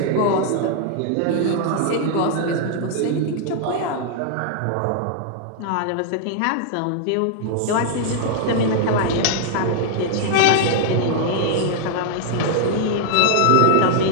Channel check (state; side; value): different; both; correlation -0.01